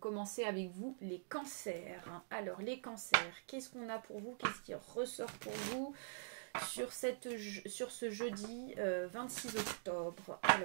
avec vous, les cancers. Alors, les cancers, qu'est-ce qu'on a pour vous? Qu'est-ce qui ressort pour vous sur ce jeudi 26 octobre?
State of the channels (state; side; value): silent; left; digital silence